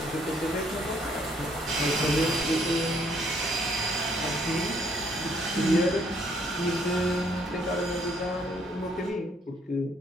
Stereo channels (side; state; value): both; normal; correlation 0.66